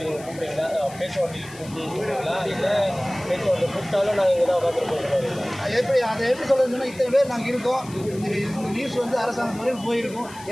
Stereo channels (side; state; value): left; noise; hiss, 19 dB below the sound